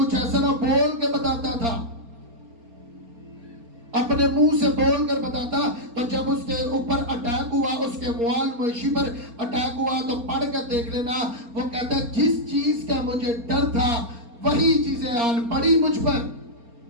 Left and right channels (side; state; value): left; late; 4.3 ms